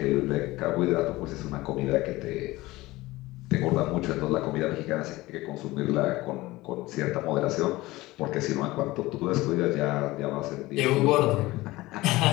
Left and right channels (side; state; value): right; quieter; 19.3 dB